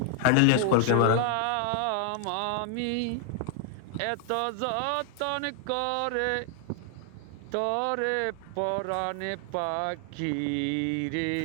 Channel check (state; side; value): different; both; correlation 0.00